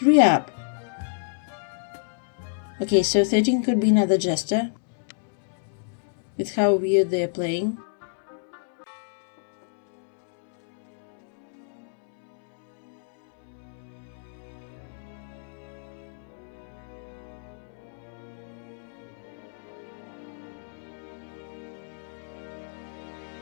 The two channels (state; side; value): silent; right; 58 dB below the other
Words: up. Okay, so 13 could be another jester, with how weird they're playing.